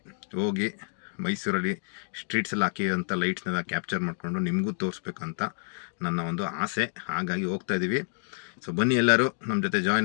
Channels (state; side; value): silent; right; digital silence